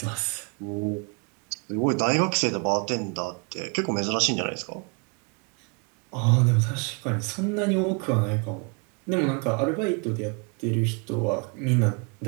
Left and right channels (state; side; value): quieter; left; 33.9 dB